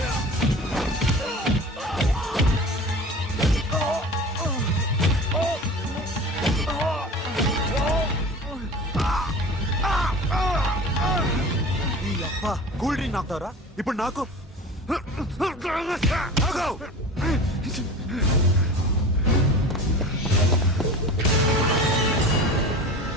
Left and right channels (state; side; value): normal; both; correlation 0.36